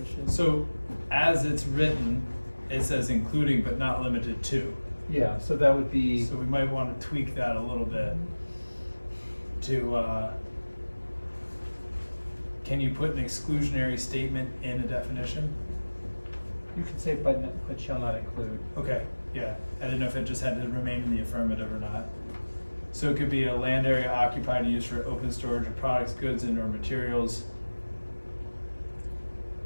So as it's written, it says including but not limited to. Yeah, so that would be, So we might want to tweak that a little bit to, can you put an exclusionary statement in a definition? you could say but shall not include. Okay, yeah, I didn't know if it just had to remain in the affirmative or not. So it could be a land area occupied and used for open storage of products, goods, and/or materials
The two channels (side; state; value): both; inverted; correlation -1.00